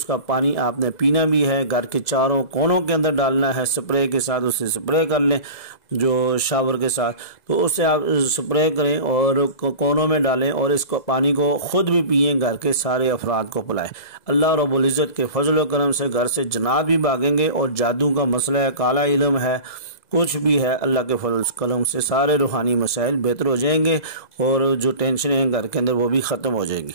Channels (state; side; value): late; right; 2.0 ms